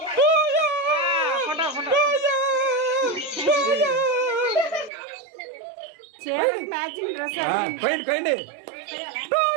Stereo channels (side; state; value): left; drops out; at 4.9 s